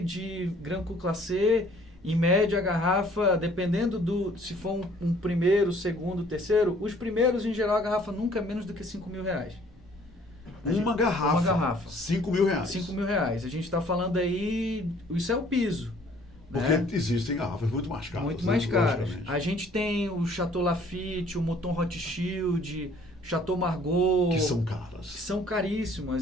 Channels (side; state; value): both; normal; correlation 0.57